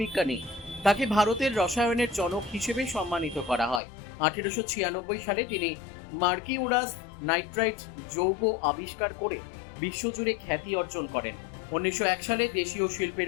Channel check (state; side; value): drops out; right; at 3.8 s